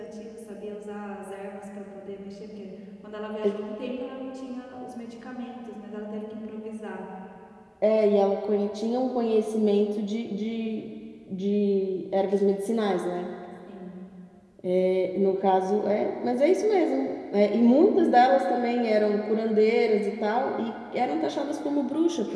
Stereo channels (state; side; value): identical; both; correlation 1.00